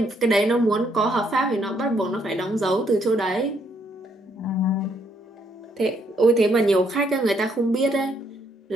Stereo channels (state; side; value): normal; both; correlation 0.71